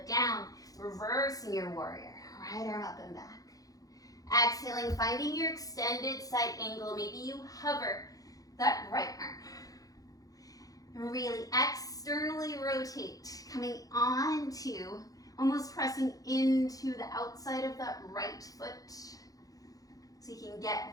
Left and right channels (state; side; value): late; right; 0.17 ms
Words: down, reversing your warrior. Right arm up and back. Exhaling, finding your extended side angle. Maybe you hover that right arm. Really externally rotate, coming onto, almost pressing into the outside of that right foot. So you can